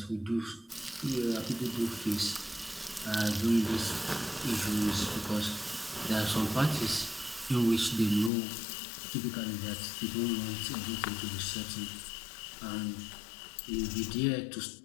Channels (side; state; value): right; drops out; at 8.3 s